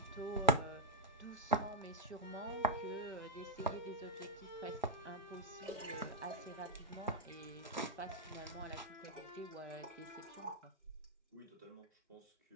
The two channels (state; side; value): normal; both; correlation -0.04